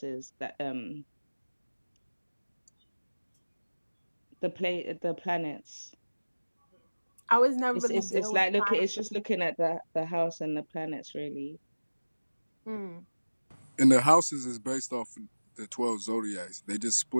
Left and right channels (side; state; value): both; inverted; correlation -1.00